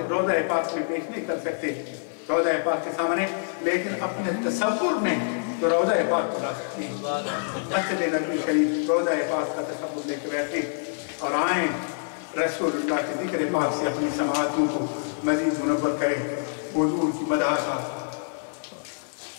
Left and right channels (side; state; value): right; silent; digital silence